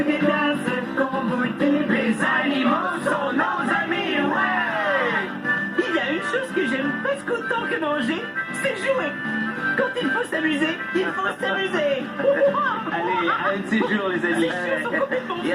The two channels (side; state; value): both; identical; correlation 1.00